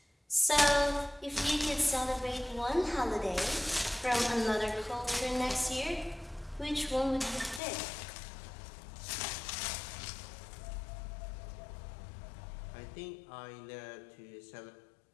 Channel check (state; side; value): drops out; right; at 7.6 s